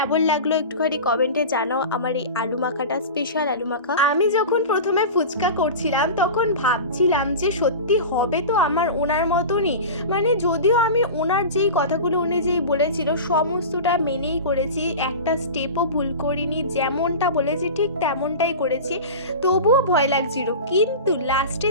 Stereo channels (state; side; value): inverted; both; correlation -0.31